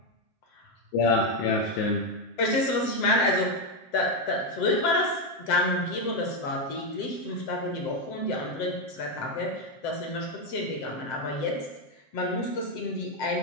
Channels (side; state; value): right; late; 7.7 ms